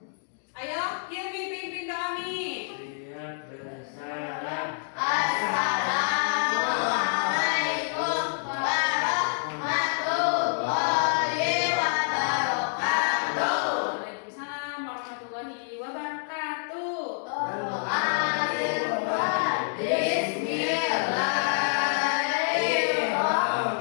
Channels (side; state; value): right; silent; digital silence